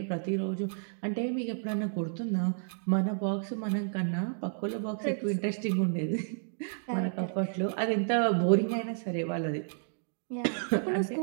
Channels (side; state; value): left; silent; digital silence